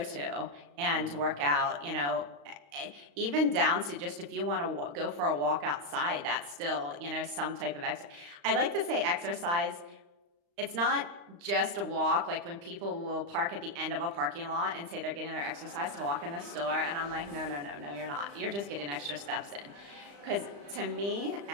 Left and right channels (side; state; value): left; late; 35 ms